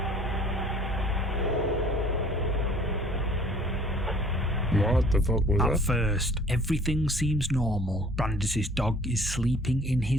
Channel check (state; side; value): normal; both; correlation 0.53